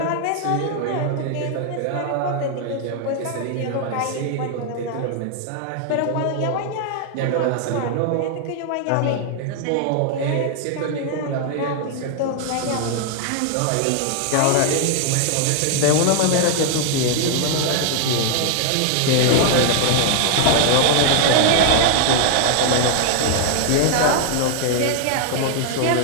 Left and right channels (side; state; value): both; different; correlation 0.00